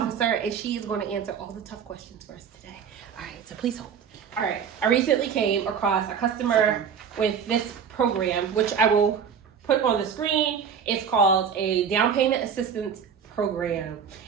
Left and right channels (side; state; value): left; quieter; 7.1 dB